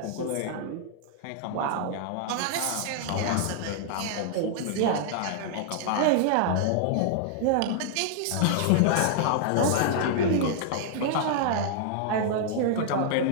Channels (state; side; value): different; both; correlation -0.01